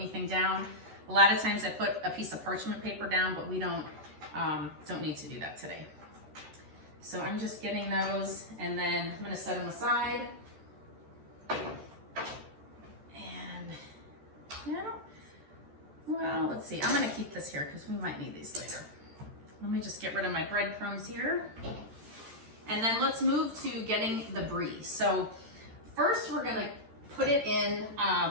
down. A lot of times I put a piece of parchment paper down, but we don't don't need to do that today. So I'm just getting those, and then I'm gonna set them aside. And well, let's see. I'm gonna keep this here because we might need these later. Let me just get rid of my breadcrumbs here. And then let's move to getting the brie. So first we're gonna put it in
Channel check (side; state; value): left; late; 13 ms